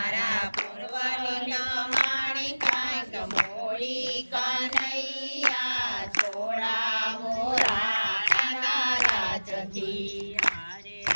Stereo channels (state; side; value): inverted; both; correlation -1.00